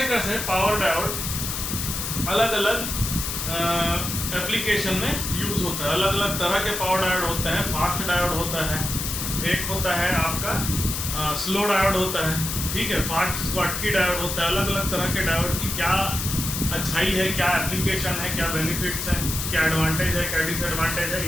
कैसे पावर डायोड अलग अलग एप्लीकेशन में यूज़ होता है। अलग अलग तरह के पावर डायोड होते हैं। फास्ट डायोड होता है, एक होता है आपका स्लो डायोड होता है। ठीक है। फास्ट स्कॉटकी डायोड होता है। अलग अलग तरह के डायोड की क्या अच्छाई है, क्या एप्लीकेशन है, क्या बेनिफिट्स हैं, क्या एडवांटेज है, क्या डिसएडवांटेज है,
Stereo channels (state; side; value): noise; left; hiss, 3 dB below the sound